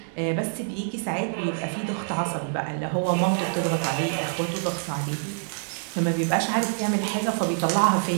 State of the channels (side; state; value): left; silent; 59 dB below the other